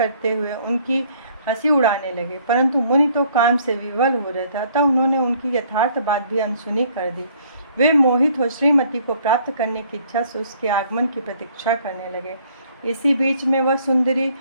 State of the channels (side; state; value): both; inverted; correlation -0.61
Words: हुए उनकी हंसी उड़ाने लगे, परंतु मुनि तो काम से विवल हो रहे थे, अतः उन्होंने उनकी यथार्थ बात भी अनसुनी कर दी। वे मोहित हो श्रीमती को प्राप्त करने की इच्छा से उसके आगमन की प्रतीक्षा करने लगे। इसी बीच में वह सुंदरी